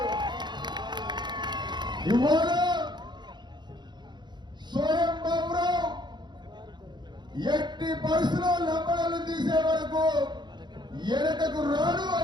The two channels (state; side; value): late; left; 0.21 ms